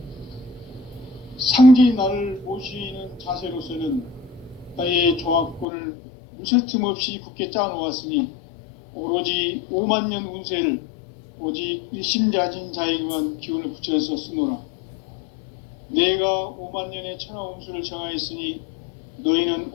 상제인 나를 모시는 자세로서는 나의 조화권을 무쇠틈 없이 굳게 짜놓았으니 오로지 5만년 운세를 오직 일심자진 자에게만 기운을 붙여서 쓰노라. 내가 5만년의 천하 운수를 정하였으니 너희는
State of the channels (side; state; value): right; drops out; at 5.7 s